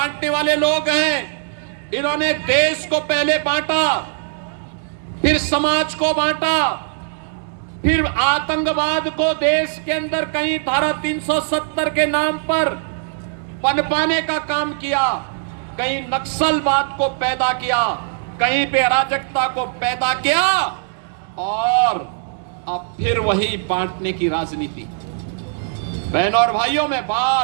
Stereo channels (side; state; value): left; silent; 66 dB below the other